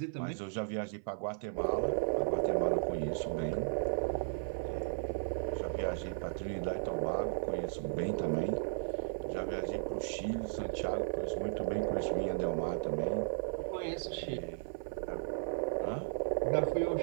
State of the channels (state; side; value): silent; left; 54 dB below the other